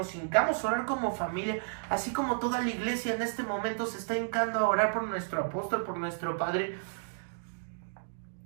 hincamos a orar como familia, así como toda la iglesia en este momento se está hincando a orar por nuestro apóstol, por nuestro padre.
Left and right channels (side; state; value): left; silent; digital silence